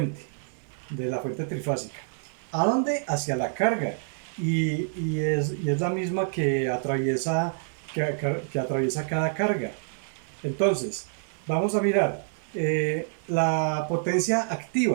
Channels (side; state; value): left; silent; digital silence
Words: de la fuente trifásica. ¿A dónde? Hacia la carga. Y es la misma que atraviesa cada carga. Entonces, vamos a mirar la potencia